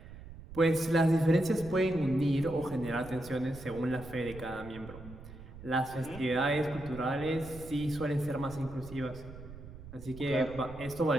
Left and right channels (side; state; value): right; noise; rumble, 15 dB below the sound